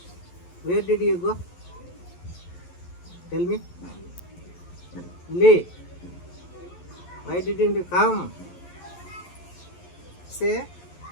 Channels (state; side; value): late; right; 11 ms